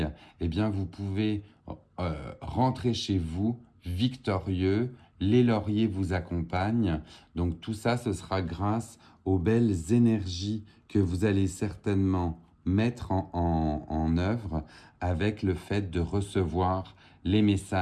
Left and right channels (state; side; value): identical; both; correlation 1.00